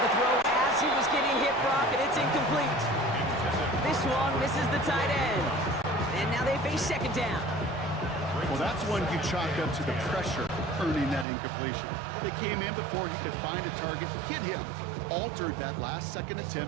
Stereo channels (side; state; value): left; drops out; at 11.2 s